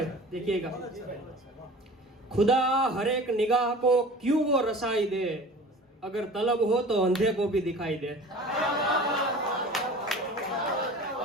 देखिएगा, खुदा हर एक निगाह को क्यों वो रसाई दे, अगर तलब हो तो अंधे को भी दिखाई दे।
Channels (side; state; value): both; normal; correlation 0.41